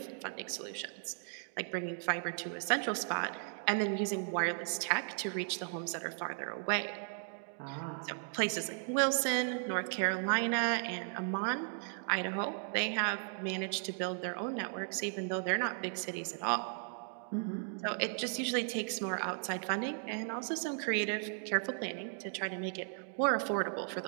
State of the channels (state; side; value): silent; left; 54 dB below the other